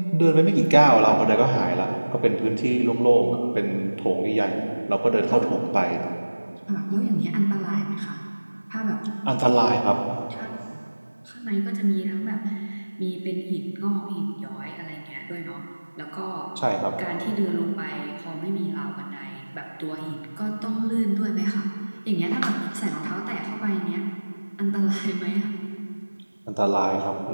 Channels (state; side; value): inverted; both; correlation -1.00